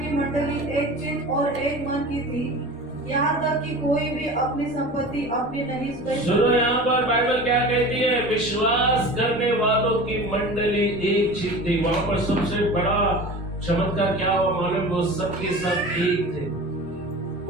मंडली एक चित्त और एक मन की थी, यहाँ तक कि कोई भी अपनी संपत्ति अपनी नहीं सुनो, यहाँ पर बाइबल क्या कहती है? विश्वास करने वालों की मंडली एक चित्त थी। वहां पर सबसे बड़ा चमत्कार क्या हुआ मालूम? वो सबके सब एक थे,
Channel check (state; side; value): normal; both; correlation 0.36